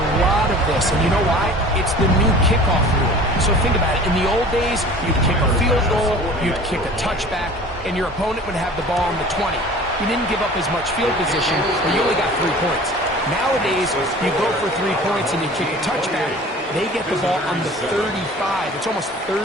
lot of this, and you know why? It's the new kickoff rule. So think about it. In the old days, you'd kick a field goal, you'd kick a touchback, and your opponent would have the ball on the 20. You didn't give up as much field position, but you only got 3 points. Nowadays, you go for 3 points and you kick a touchback. They get the ball on the 35. It's almost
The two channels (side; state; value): both; normal; correlation 0.44